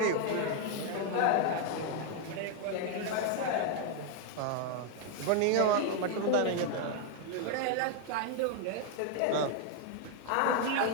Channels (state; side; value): different; both; correlation 0.00